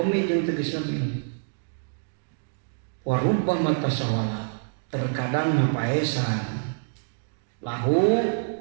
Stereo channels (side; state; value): left; silent; digital silence